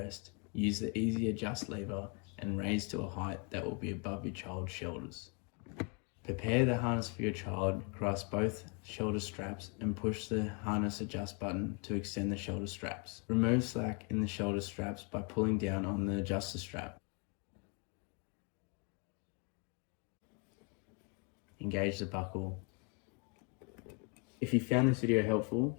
use the easy adjust lever and raise to a height that will be above your child's shoulders. Prepare the harness for your child, grasp both shoulder straps and push the harness adjust button to extend the shoulder straps. Remove slack in the shoulder straps by pulling down on the adjuster strap. Engage the buckle. If you found this video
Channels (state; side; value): quieter; right; 35.2 dB